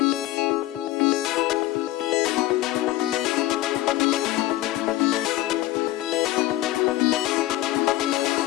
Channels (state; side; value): quieter; right; 15.8 dB